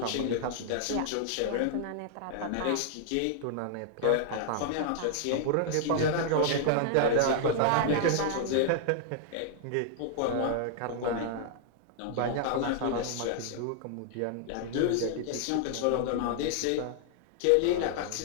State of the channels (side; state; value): both; different; correlation -0.01